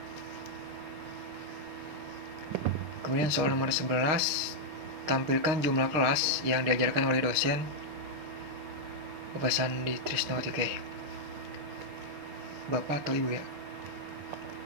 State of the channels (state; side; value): late; left; 6.4 ms